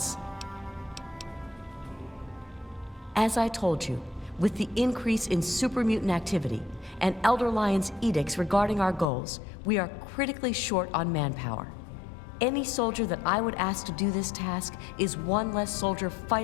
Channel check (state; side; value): drops out; right; at 9.1 s